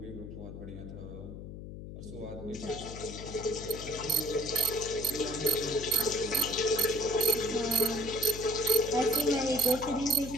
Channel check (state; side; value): noise; left; hum, 10 dB below the sound